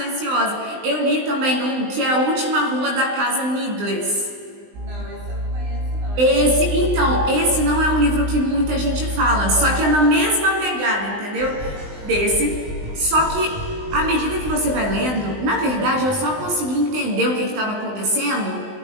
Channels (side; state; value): left; late; 20 ms